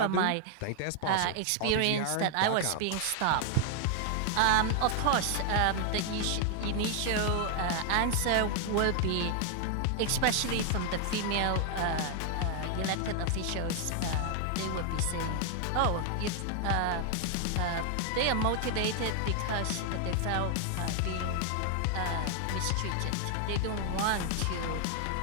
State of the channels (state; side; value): different; both; correlation 0.00